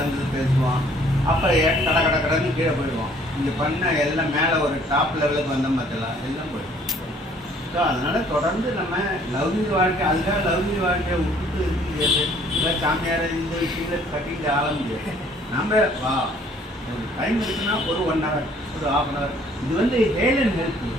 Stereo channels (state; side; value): normal; both; correlation 0.59